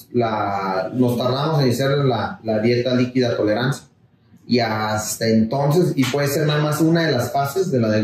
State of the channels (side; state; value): both; identical; correlation 1.00